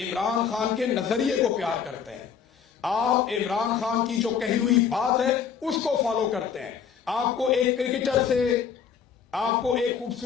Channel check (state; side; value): quieter; right; 7.2 dB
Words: खान के नजरिए को प्यार करते हैं, आप इमरान खान की जो कही हुई बात है उसको फॉलो करते हैं। आपको एक क्रिकेटर से, आपको एक